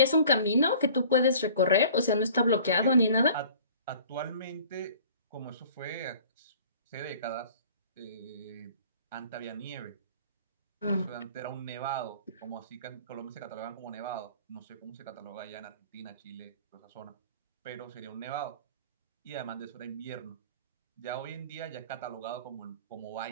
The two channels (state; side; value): inverted; both; correlation -0.48